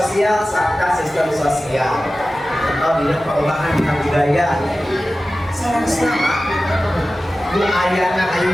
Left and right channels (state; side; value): normal; both; correlation 0.95